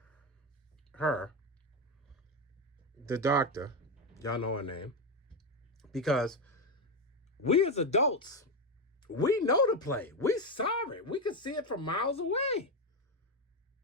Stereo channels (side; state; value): both; normal; correlation 0.10